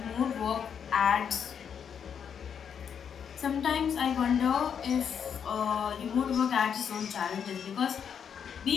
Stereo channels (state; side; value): quieter; right; 7.6 dB